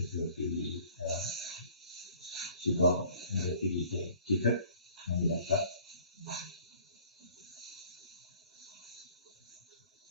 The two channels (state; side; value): inverted; both; correlation -0.54